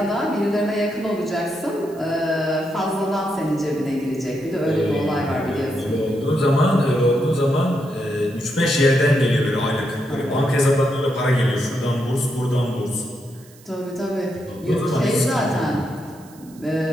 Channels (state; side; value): noise; right; hiss, 25 dB below the sound